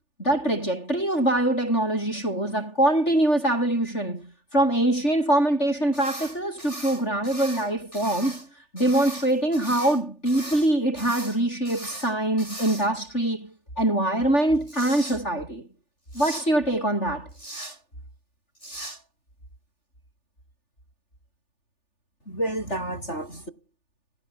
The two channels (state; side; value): late; right; 3.4 ms